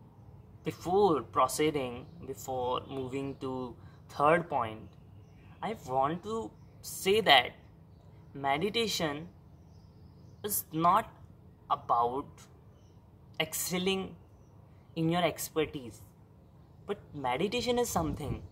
before proceeding, before moving to third point, I want to say that meditation is not about excelling in your expertise, but meditation is something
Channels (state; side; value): identical; both; correlation 1.00